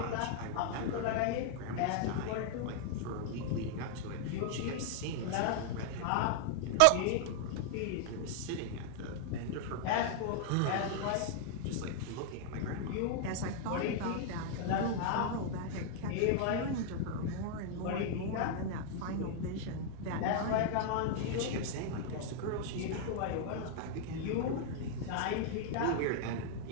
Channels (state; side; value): different; both; correlation 0.00